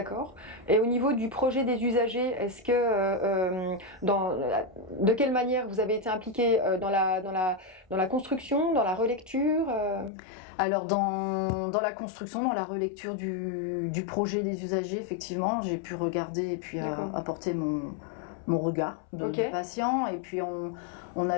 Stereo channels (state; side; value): drops out; right; at 10.1 s